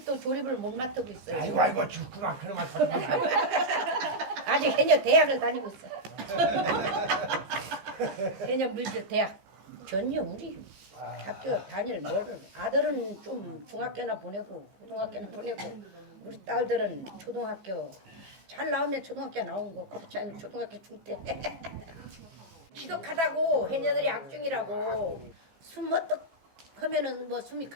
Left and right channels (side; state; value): left; late; 15 ms